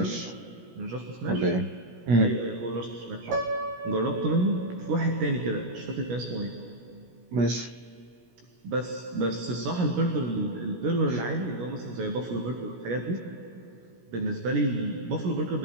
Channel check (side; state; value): left; late; 17 ms